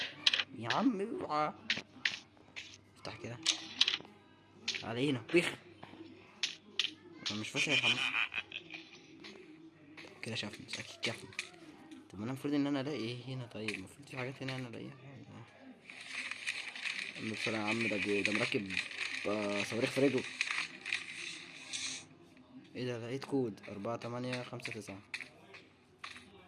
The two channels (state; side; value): identical; both; correlation 1.00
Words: يا عم اوعى. افتح كده علينا بيخ. انا مش فاكر الحمام كده شافني اكيد شافني. طب انا المفروض ان انا الاقي ايه هنا؟ طيب المفروض في حاجات هنا انا الاقيها. بسرعة يا عم، ده مركب صواريخ في رجله. ايه ده؟ لقيت كود 4859.